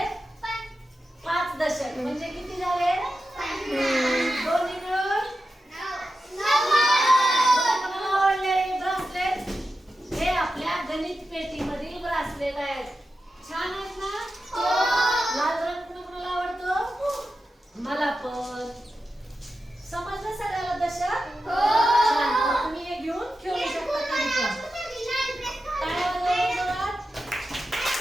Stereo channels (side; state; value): both; normal; correlation 0.91